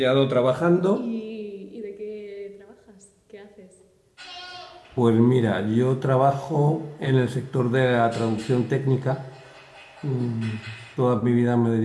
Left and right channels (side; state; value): both; identical; correlation 1.00